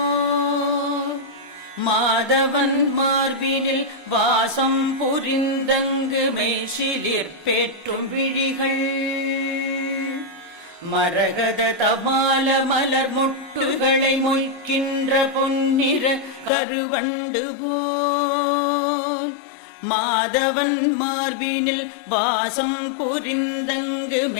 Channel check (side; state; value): right; drops out; at 16.5 s